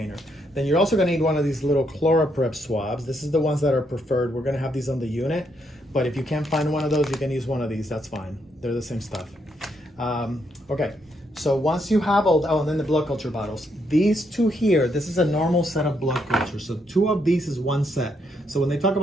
Then you're also going to need one of these little ChloraPrep swabs. This is the ones that are preferred. We're going to have these on the unit, but if you can't find one of those, you can use one of these. That's fine. They're the same stuff. Okay. So once you have and then the blood culture bottles. These two here, this is a normal set of blood cultures. So 2 of these is 1 set. So when they talk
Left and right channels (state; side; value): normal; both; correlation 0.76